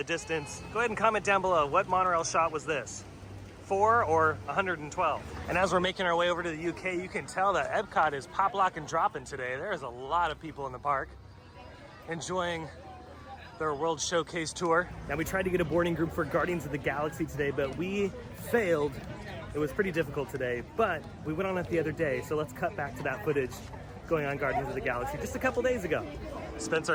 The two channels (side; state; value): both; identical; correlation 1.00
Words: distance. Go ahead and comment down below. What monorail shot was this? 4 or 112? And as we're making our way over to the UK, you can tell that Epcot is pop, lock, and dropping today. There's a lot of people in the park enjoying their World Showcase tour. Now, we tried to get a boarding group for Guardians of the Galaxy today, but we failed. It was pretty difficult today, but we went on it the other day, so let's cut back to that footage going on Guardians of the Galaxy just a couple days ago. Spencer,